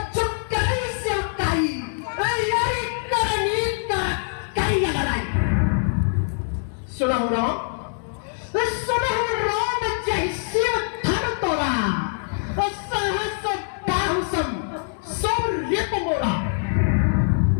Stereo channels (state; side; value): silent; right; digital silence